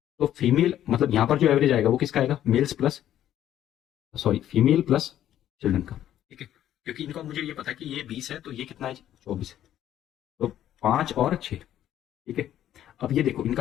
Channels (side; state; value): right; quieter; 11.6 dB